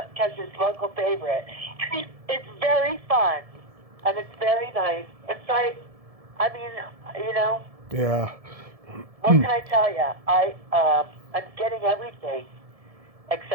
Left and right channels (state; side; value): late; left; 1.7 ms